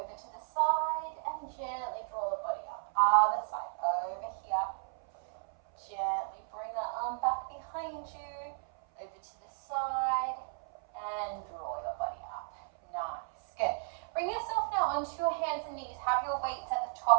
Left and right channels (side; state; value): left; silent; 55 dB below the other